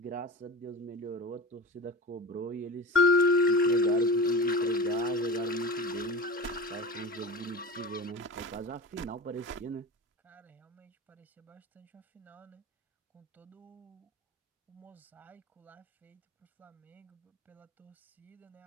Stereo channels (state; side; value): normal; both; correlation 0.31